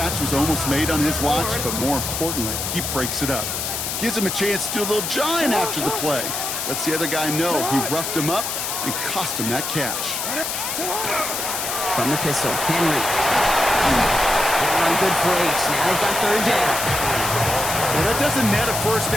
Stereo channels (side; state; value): left; noise; hiss, 3 dB below the sound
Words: was almost made on his watch, but more importantly, he breaks it up. Gives him a chance to do a little jawing after the play. Lets the other guy know he roughed him up and cost him that catch. From the pistol, Henry. Run good for 8. Now they've got 3rd down. Well, that doesn't net a 1st